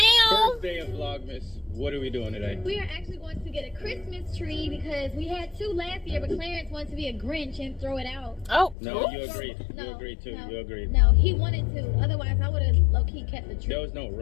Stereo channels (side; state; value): right; drops out; at 8.8 s